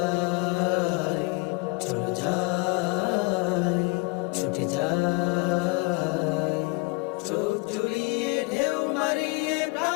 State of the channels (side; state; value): right; quieter; 28.4 dB